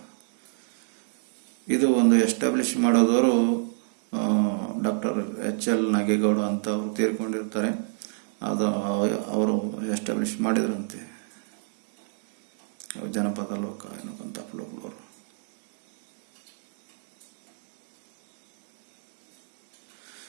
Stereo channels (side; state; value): left; silent; digital silence